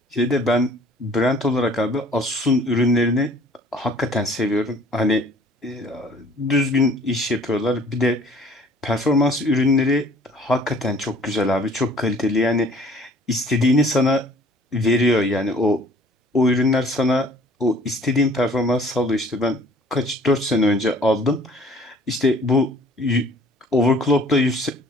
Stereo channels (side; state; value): both; normal; correlation 0.53